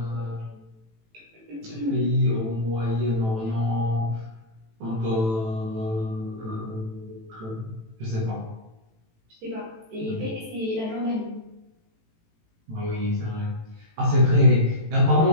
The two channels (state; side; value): late; left; 18 ms